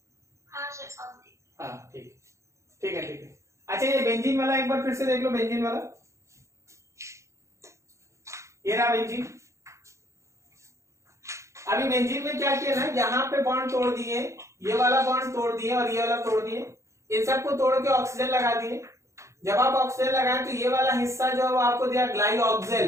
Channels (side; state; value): left; late; 0.14 ms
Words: सर। हाँ ठीक है। अच्छा, ये बेंजीन वाला एक बार फिर से देख लो, बेंजीन वाला, ये रहा बेंजीन। अभी बेंजीन में क्या किया ना, यहाँ पे बॉन्ड तोड़ दिए, ये वाला बॉन्ड तोड़ दिए और ये वाला तोड़ दिए, इन सबको तोड़ के ऑक्सीजन लगा दिए। जब आप ऑक्सीजन लगाएं तो ये वाला हिस्सा जो है वो आपको दिया